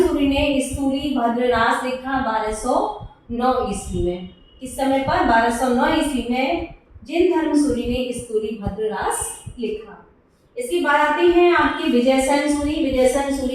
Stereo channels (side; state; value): both; identical; correlation 1.00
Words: सूरी ने स्तूरी भद्र रास लिखा 1209 ईस्वी में। इस समय पर 1209 ईस्वी में जिनधर्म सूरी ने स्तूरी भद्र रास लिखा। इसके बाद आते हैं आपके विजयसेन सूरी। विजयसेन